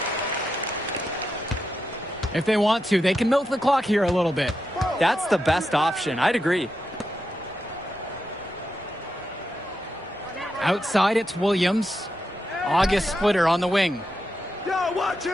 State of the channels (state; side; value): normal; both; correlation 0.86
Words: If they want to, they can milk the clock here a little bit. That's the best option. I'd agree. Outside, it's Williams. August Splitter on the wing.